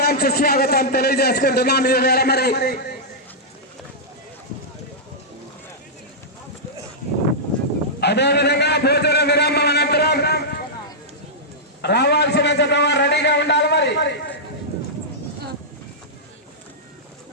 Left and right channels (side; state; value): both; normal; correlation -0.11